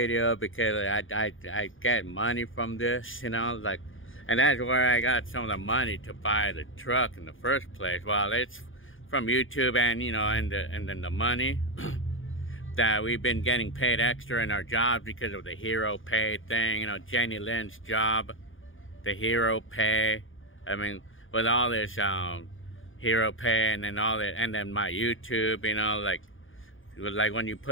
because I get money from this, you know, like, and that's where I got some of the money to buy the truck in the first place. Well, it's from YouTube, and you know, and then the money that we've been getting paid extra in our jobs because of the hero pay thing, you know, Jenny Lynn's job, the hero pay. I mean, with all this hero pay and then all that, and then my YouTube, you know, like when you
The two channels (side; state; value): right; late; 0.58 ms